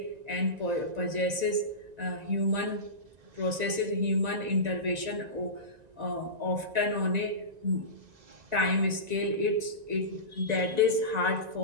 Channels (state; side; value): late; left; 1.9 ms